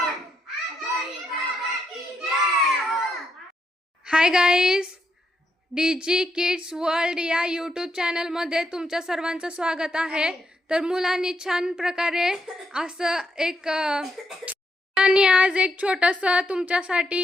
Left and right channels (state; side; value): normal; both; correlation 0.80